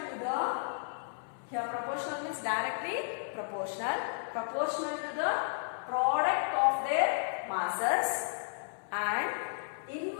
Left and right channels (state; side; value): silent; right; 56 dB below the other